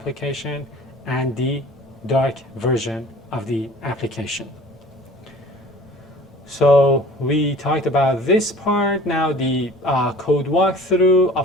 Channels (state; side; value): normal; both; correlation 0.45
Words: and the dark version of the application. So we talked about this part. Now the code walkthrough.